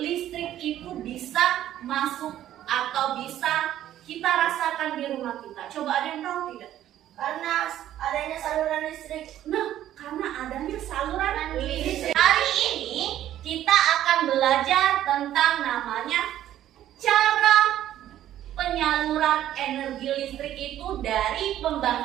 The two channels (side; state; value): left; quieter; 12.2 dB